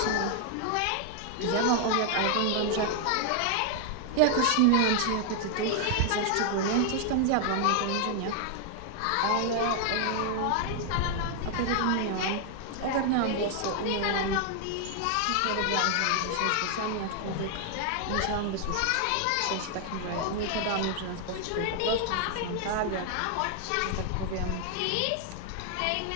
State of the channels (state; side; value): different; both; correlation 0.00